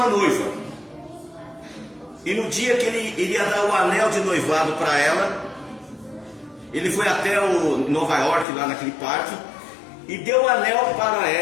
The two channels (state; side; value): drops out; right; at 8.5 s